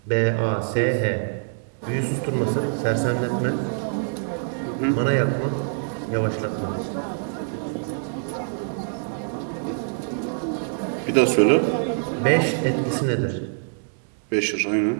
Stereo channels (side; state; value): left; silent; digital silence